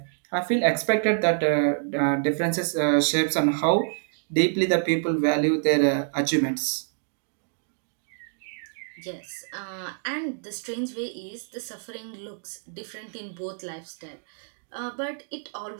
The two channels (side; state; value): left; silent; digital silence